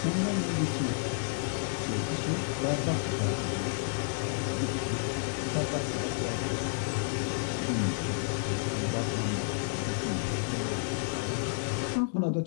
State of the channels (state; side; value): silent; right; 57 dB below the other